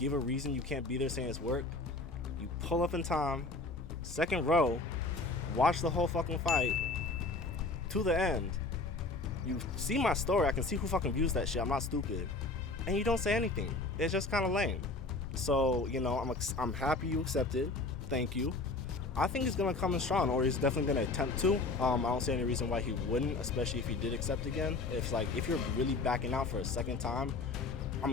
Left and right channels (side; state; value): right; quieter; 3.4 dB